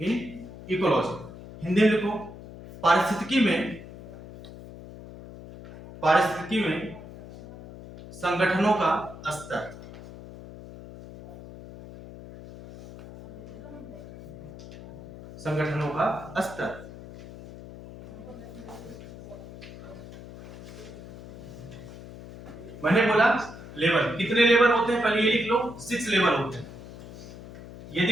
ecology, Hindi में लिखो पारिस्थितिकी में संगठनों का स्तर, संगठनों का स्तर, मैंने बोला लेवल, कितने लेवल होते हैं, पहले ये लिख लो, 6 लेवल होते हैं, ये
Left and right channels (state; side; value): noise; left; hum, 15 dB below the sound